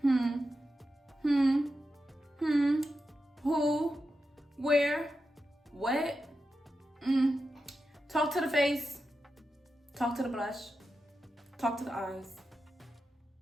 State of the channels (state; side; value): normal; both; correlation 0.89